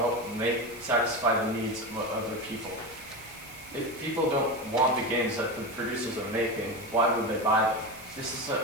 satisfy the needs of other people. If people don't want the games that the producers are making, why would they buy them? This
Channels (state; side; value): noise; right; hiss, 18 dB below the sound